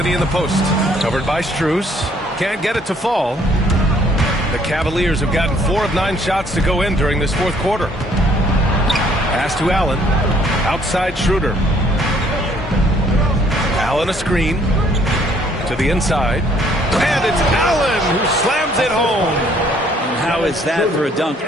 in the post. Covered by Strus. Can't get it to fall. The Cavaliers have gotten 4 of 9 shots to go in during this fourth quarter. Pass to Allen. Outside Schroeder. Allen a screen. To the inside. And it's Allen who slams it home. And how is that for a dunk?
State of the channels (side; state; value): both; normal; correlation 0.63